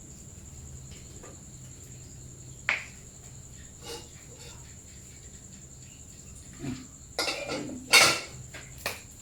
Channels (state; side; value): identical; both; correlation 1.00